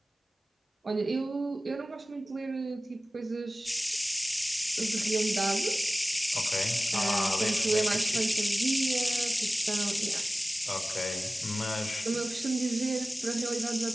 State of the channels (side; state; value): both; normal; correlation 0.97